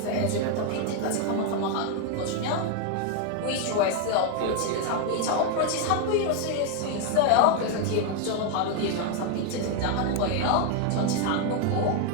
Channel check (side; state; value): both; different; correlation 0.01